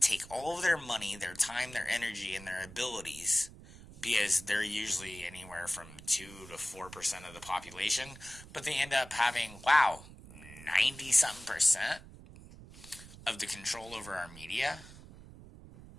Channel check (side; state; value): right; noise; rumble, 17 dB below the sound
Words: take all of their money, their time, their energy, and their abilities, because they're usually anywhere from 2 to 4% of the population, but they end up having, 90-something% of the control over our media?